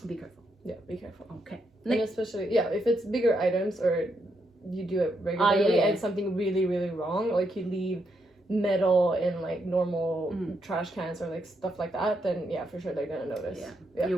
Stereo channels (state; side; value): normal; both; correlation 0.79